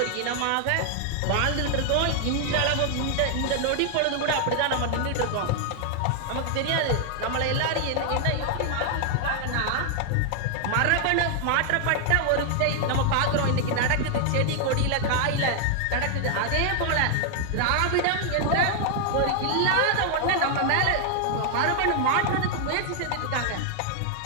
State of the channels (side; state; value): both; different; correlation 0.00